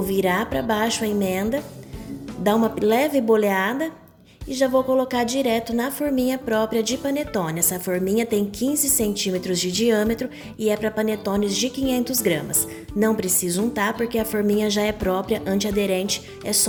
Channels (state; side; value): identical; both; correlation 1.00